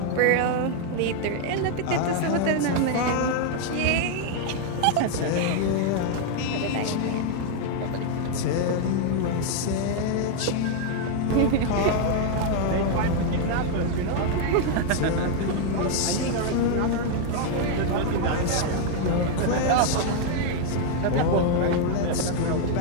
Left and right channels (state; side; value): different; both; correlation 0.00